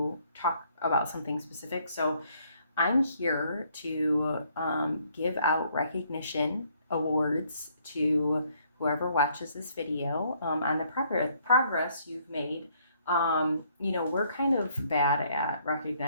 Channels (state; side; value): inverted; both; correlation -0.66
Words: talk about something specific. So I'm here to give out recognition awards to whoever watches this video on the progress you've made. We're kind of bad at